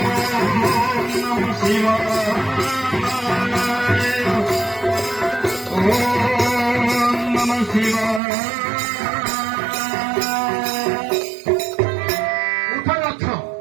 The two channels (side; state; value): left; drops out; at 8.2 s